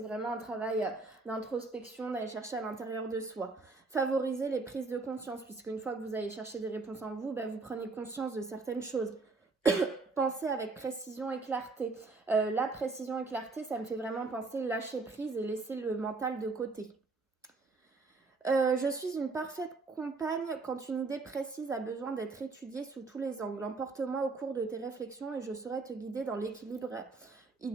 un travail d'introspection, d'aller chercher à l'intérieur de soi. Favoriser les prises de conscience, puisque une fois que vous allez chercher des réponses en vous, vous prenez conscience de certaines choses. Pensez avec précision et clarté. La précision et clarté, ça me fait vraiment penser lâcher prise et laisser le mental de côté. Je suis une parfaite compagne quand une idée précise a besoin d'être étudiée sous tous les angles. Emporte-moi au cours de tes réflexions et je saurai te guider dans l'équilibre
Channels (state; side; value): quieter; left; 3.8 dB